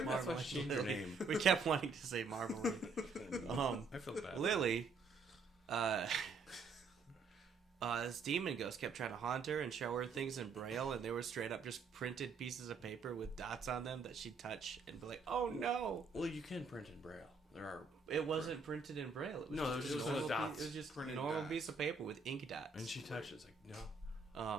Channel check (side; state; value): left; quieter; 4.4 dB